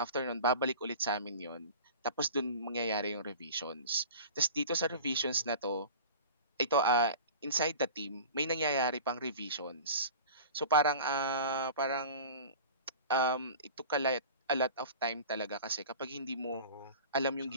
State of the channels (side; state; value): both; inverted; correlation -0.38